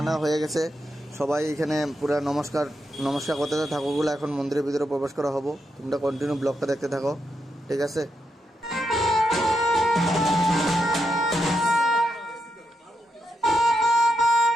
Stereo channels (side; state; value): both; normal; correlation 0.83